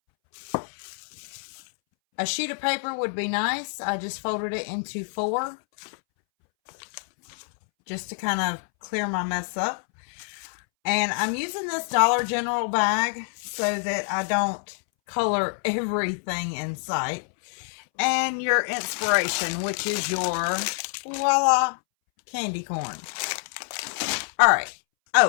A sheet of paper would be nice. I just folded it into 4 just to kind of clear my mess up. And I'm using this Dollar General bag so that I don't color everything in sight. And your inspiration, which is your voila candy corn. All right.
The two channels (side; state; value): right; silent; 61 dB below the other